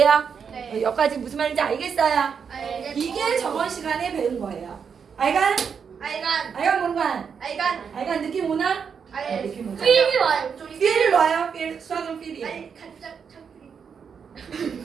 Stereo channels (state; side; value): quieter; left; 6.6 dB